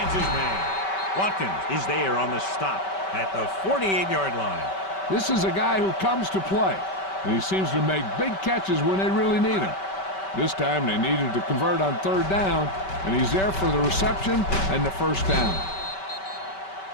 his man. Watkins is there on the stop at the 48-yard line. This is a guy who comes to play, and he seems to make big catches when they really need him. This time they needed to convert on third down, and he's there for the reception and the first down.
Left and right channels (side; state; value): right; late; 5.2 ms